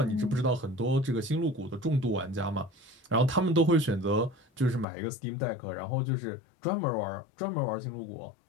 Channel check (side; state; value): right; drops out; at 4.9 s